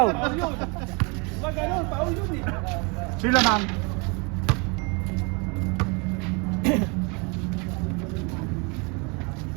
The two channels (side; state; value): left; quieter; 31.1 dB